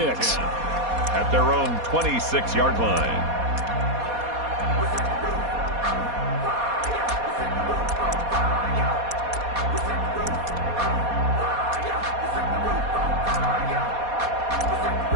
At their own 26-yard line.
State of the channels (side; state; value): left; late; 4.2 ms